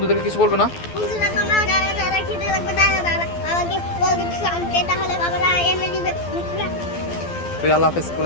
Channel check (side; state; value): right; late; 12 ms